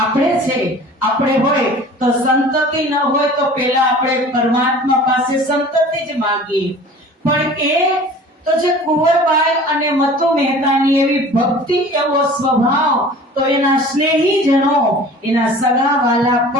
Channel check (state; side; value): normal; both; correlation 0.44